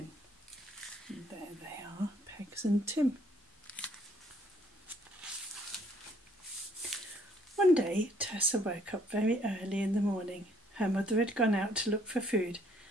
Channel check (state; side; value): normal; both; correlation 0.64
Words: And there they are, Pegs and Tim. One day, Tessa woke up very early in the morning. Her mother had gone out to look for food,